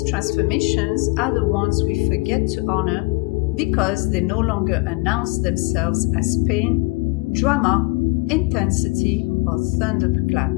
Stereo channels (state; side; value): quieter; right; 25.6 dB